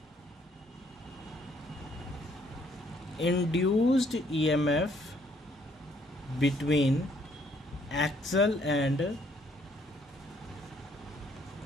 induced EMF between axle and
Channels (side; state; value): both; normal; correlation 0.66